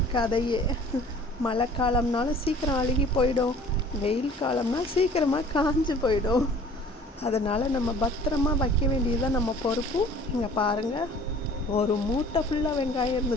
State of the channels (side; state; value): both; normal; correlation 0.49